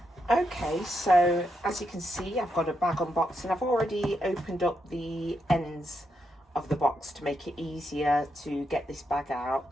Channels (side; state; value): both; normal; correlation 0.82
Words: Okay, so as you can see, I've got a bag unboxing. I've already opened up the ends of the box to make it easier to get this bag out.